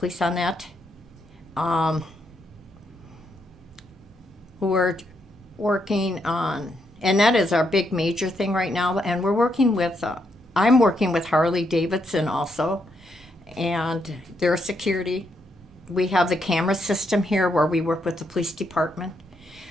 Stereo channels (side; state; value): both; normal; correlation 0.78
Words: on that. We're working on, and that is our big major thing right now, and we're working with, I'm working with Harley Davidson also, and their security. We have the camera system here where we work with the police department.